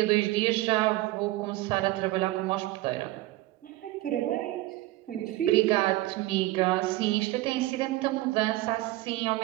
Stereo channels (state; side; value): quieter; left; 17.8 dB